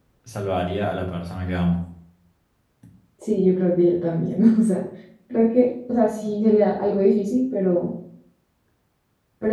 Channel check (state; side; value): identical; both; correlation 1.00